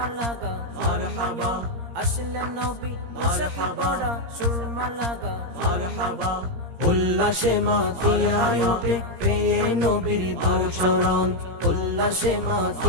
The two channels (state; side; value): late; left; 17 ms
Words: লাগা নয়ন, আসলেন নবী পোশাক পরা সুরমা লাগা নয়ন। উল্লাসে মাতিয়ায় ওঠে পেয়ে নবীর দোচরণ, উল্লাসে